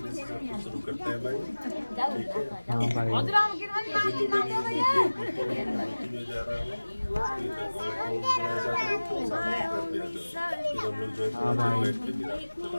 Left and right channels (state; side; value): inverted; both; correlation -1.00